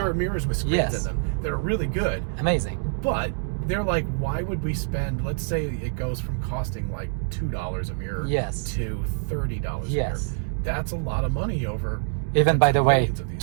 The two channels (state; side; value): silent; left; digital silence